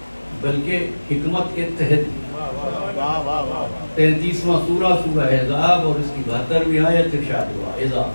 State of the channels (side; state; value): both; inverted; correlation -1.00